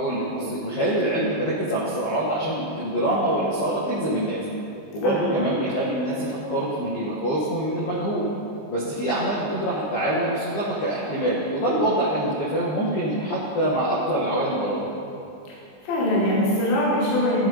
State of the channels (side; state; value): right; late; 20 ms